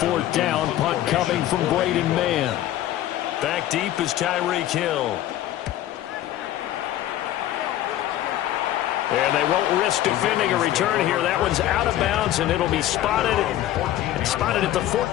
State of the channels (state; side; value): quieter; right; 13.3 dB